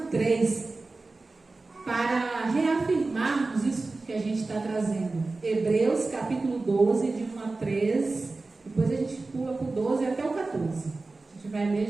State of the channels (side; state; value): left; quieter; 3.5 dB